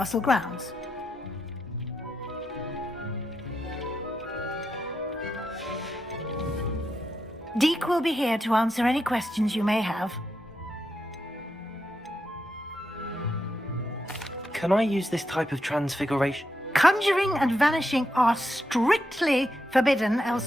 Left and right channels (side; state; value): both; normal; correlation 0.84